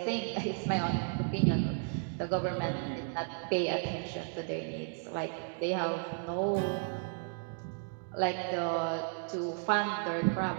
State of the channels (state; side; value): silent; left; 55 dB below the other